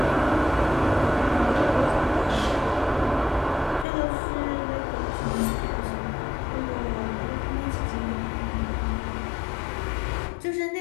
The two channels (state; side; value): drops out; right; at 3.9 s